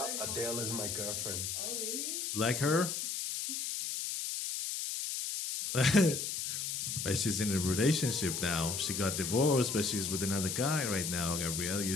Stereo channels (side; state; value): left; noise; hiss, 3 dB below the sound